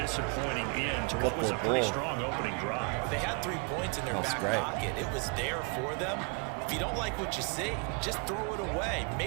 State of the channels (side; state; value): left; quieter; 33.5 dB